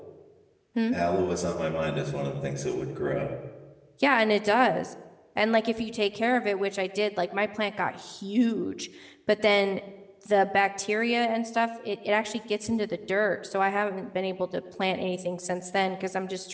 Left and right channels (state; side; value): identical; both; correlation 1.00